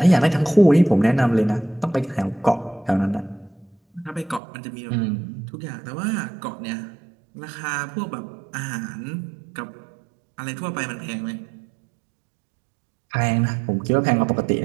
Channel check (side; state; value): left; drops out; at 4.4 s